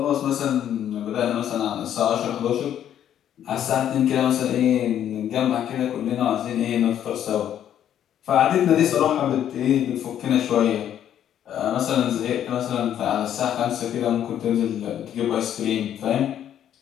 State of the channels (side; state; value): right; quieter; 10.3 dB